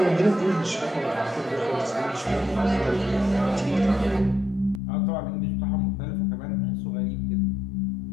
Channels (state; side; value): drops out; right; at 4.8 s